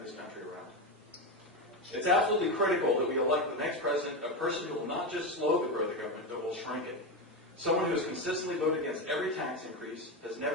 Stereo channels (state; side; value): normal; both; correlation 0.15